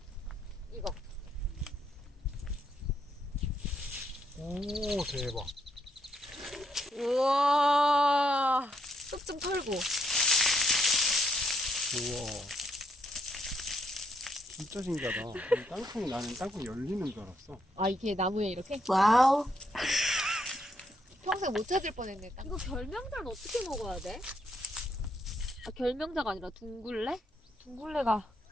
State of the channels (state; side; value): normal; both; correlation 0.75